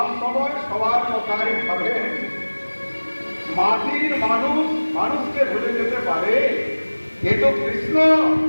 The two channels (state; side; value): inverted; both; correlation -1.00